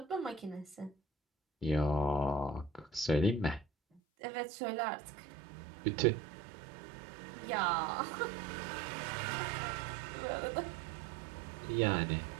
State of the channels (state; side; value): drops out; left; at 4.0 s